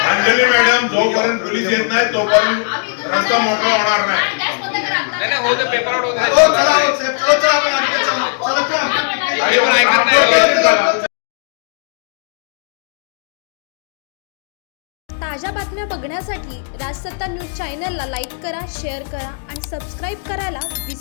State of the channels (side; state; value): right; silent; digital silence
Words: मॅडम, जोपर्यंत पोलीस येत नाही तोपर्यंत रस्ता मोकळा होणार नाही. हो, चला, हो, साहेब, चला, आपण आणखी चला, आणि मग ट्रान्सपोर्ट झाला. ताज्या बातम्या बघण्यासाठी राजसत्ता न्यूज चॅनलला लाईक करा, शेअर करा आणि सबस्क्राईब करायला